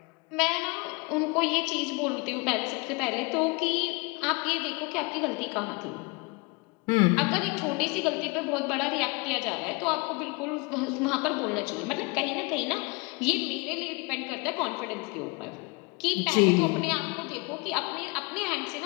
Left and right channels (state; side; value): quieter; right; 28.6 dB